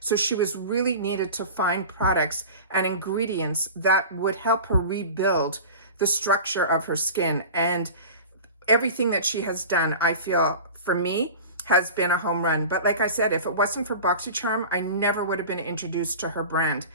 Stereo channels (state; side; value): inverted; both; correlation -0.35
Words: she was really needed to find products and ingredients that would help her rebuild the structure of her skin. And everything that she has done, I feel, for me, has been a home run. But like I said, if it wasn't for Boxycharm, I never would have been introduced to her brand.